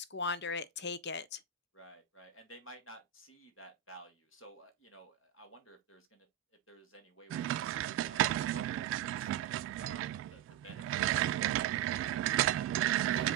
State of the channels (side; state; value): left; quieter; 9.8 dB